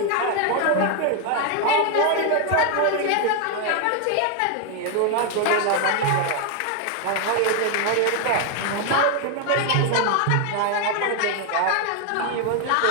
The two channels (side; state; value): both; different; correlation 0.01